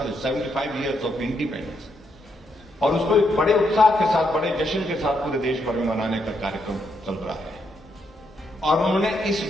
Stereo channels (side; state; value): both; normal; correlation 0.78